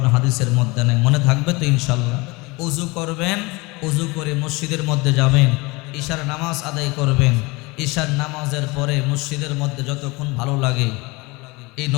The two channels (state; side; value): quieter; right; 24.9 dB